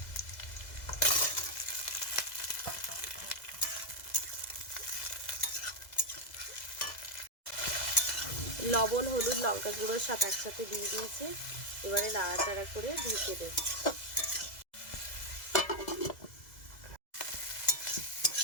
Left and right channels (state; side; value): late; right; 2.0 ms